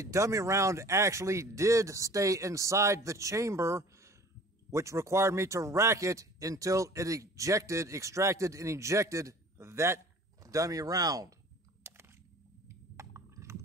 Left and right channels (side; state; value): both; normal; correlation 0.47